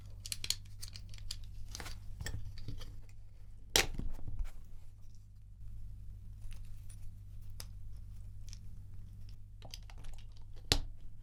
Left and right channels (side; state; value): both; identical; correlation 1.00